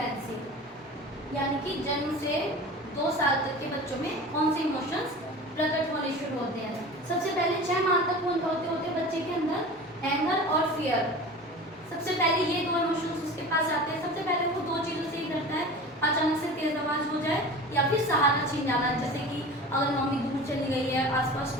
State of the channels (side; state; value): both; normal; correlation 0.36